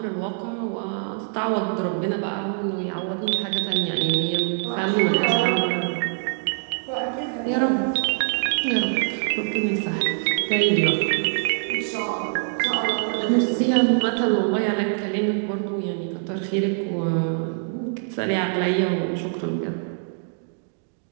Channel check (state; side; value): silent; left; 63 dB below the other